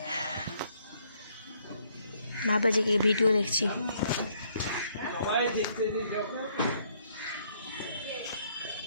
ভাবে যে কি ভিডিও দেখছি।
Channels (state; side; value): inverted; both; correlation -0.68